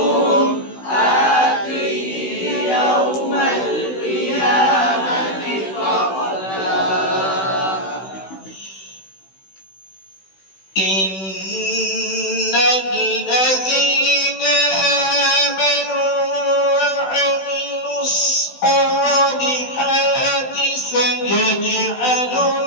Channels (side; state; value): right; late; 16 ms